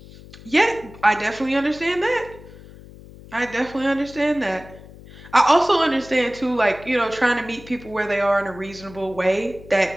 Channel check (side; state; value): left; noise; hum, 19 dB below the sound